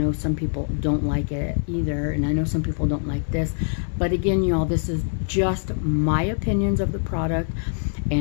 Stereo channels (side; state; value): right; silent; 63 dB below the other